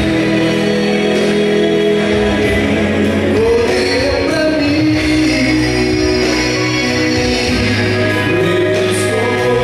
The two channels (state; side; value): identical; both; correlation 1.00